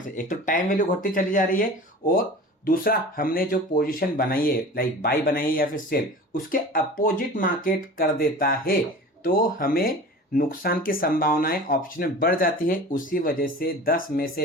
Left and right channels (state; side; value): normal; both; correlation 0.38